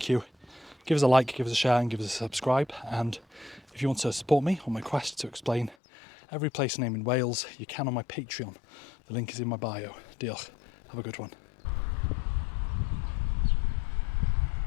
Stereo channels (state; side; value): drops out; right; at 5.8 s